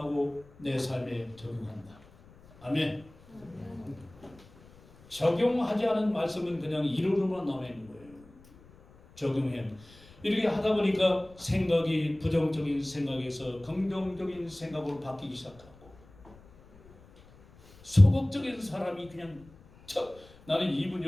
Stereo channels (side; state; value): left; noise; rumble, 24 dB below the sound